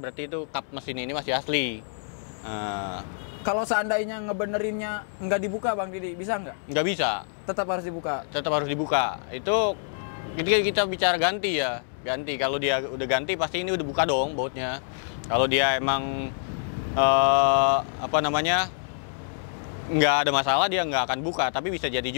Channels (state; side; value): silent; right; digital silence